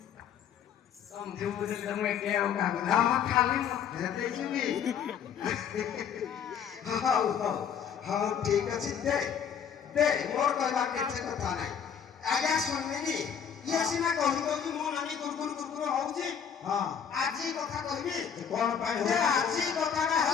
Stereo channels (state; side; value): quieter; right; 7.9 dB